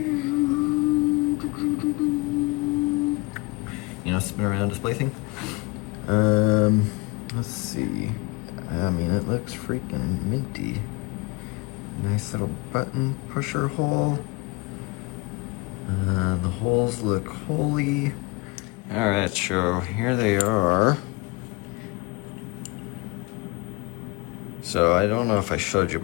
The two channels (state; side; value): quieter; right; 26.5 dB